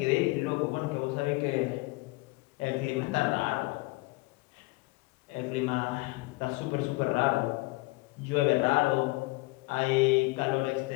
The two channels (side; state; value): right; quieter; 23.0 dB